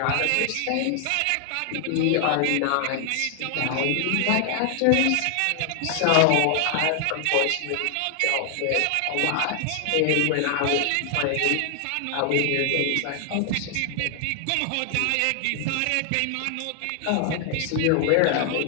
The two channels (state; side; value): different; both; correlation 0.00